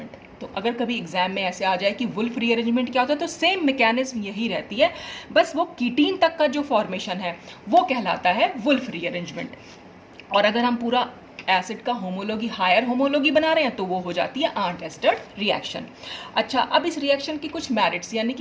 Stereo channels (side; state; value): both; identical; correlation 1.00